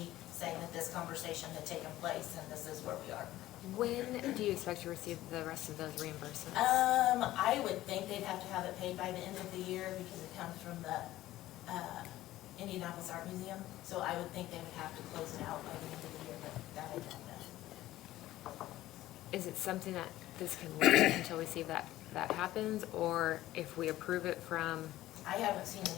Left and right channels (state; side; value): quieter; right; 15.3 dB